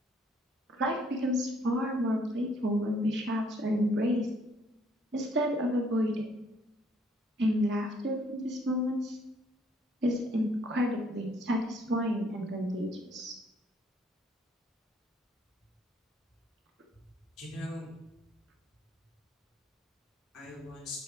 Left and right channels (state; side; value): normal; both; correlation 0.65